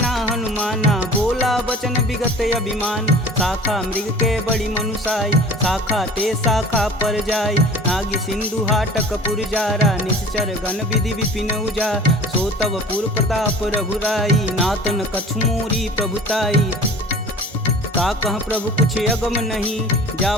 हनुमाना, बोला बचन विगत अभिमान। शाखा मृग के बड़ी मनुसाई, शाखा ते शाखा पर जाई। नागी सिंधु हाटक पुर जारा, निश्चर गण विधि विपिन उजा। सो तब पुर प्रताप रघुराई, नातन कछु मोरी प्रभुताई। का कह प्रभु कुछ अगम नहीं, जा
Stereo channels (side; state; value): both; normal; correlation 0.43